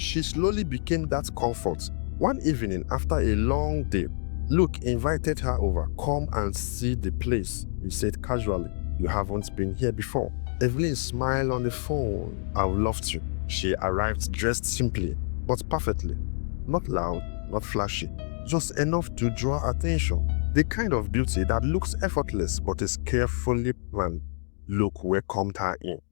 slowly became that comfort. One evening after a long day, Luke invited her over. "Come and see the place," he said casually. "You haven't been here before." Evelyn smiled on the phone. "I would love to." She arrived dressed simply, but perfectly. Not loud, not flashy, just enough to draw attention. The kind of beauty that looks effortless but is carefully planned. Luke welcomed her in,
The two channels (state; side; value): silent; right; digital silence